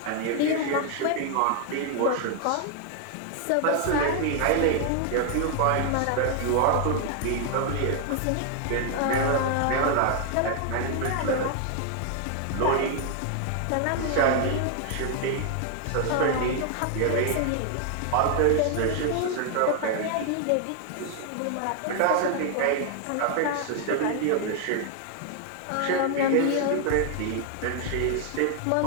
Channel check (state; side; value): different; both; correlation 0.00